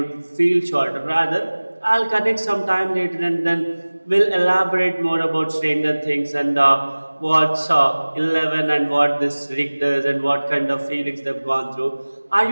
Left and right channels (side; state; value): both; inverted; correlation -1.00